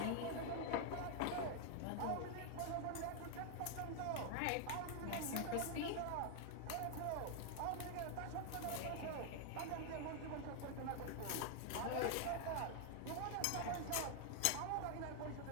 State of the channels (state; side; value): different; both; correlation 0.00